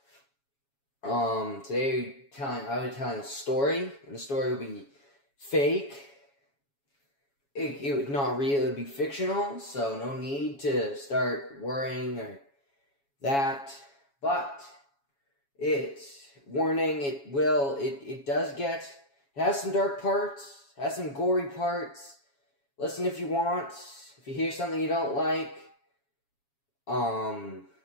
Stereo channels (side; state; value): right; late; 7.2 ms